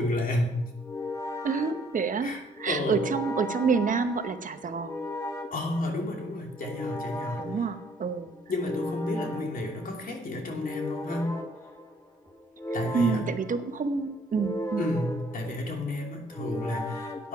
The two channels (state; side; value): normal; both; correlation 0.63